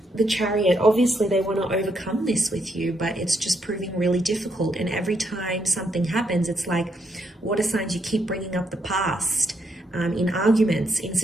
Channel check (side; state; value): both; normal; correlation 0.77